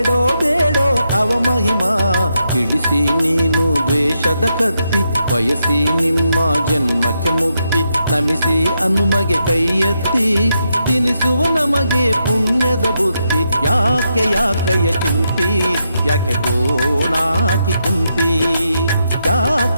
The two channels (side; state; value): both; inverted; correlation -0.82